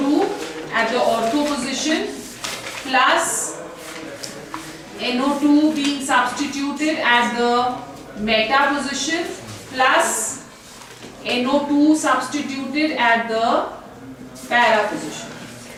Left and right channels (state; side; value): identical; both; correlation 1.00